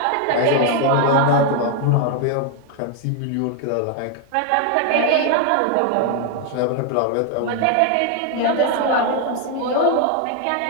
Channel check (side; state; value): both; different; correlation 0.01